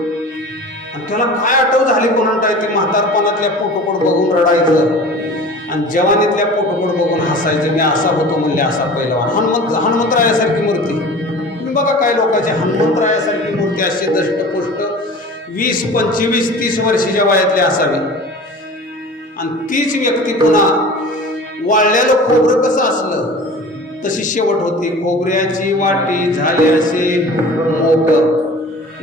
आणि त्याला काय आठव झाली कोणाला, ती म्हातारपणातल्या फोटोकडे बघून रडायचं आणि जवानीतल्या फोटोकडे बघून हसायचं. मी असा होतो म्हणले, असा पैलवान. हनुमंतरायासारखी मूर्ती. तुम्ही बघा काय लोकांची हनुमंतरायासारखी मूर्ती अशी दष्टपुष्ट 20, 25, 30 वर्षाच्या वयातली असावी. आणि तीच व्यक्ती पुन्हा वाळलेलं खोबरं कसं असलं तशी शेवट होती. खोबऱ्याची वाटी झाली असे मोठ,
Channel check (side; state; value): both; normal; correlation 0.39